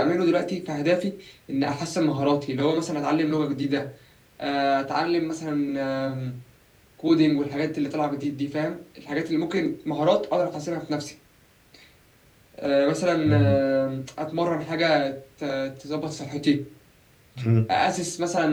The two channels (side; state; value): both; identical; correlation 1.00